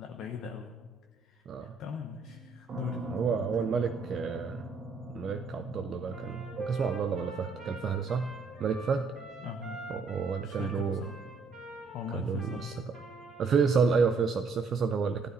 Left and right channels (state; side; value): quieter; left; 4.5 dB